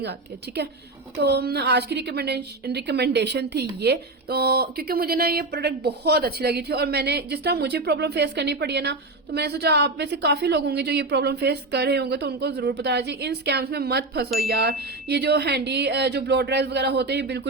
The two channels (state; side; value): quieter; left; 3.1 dB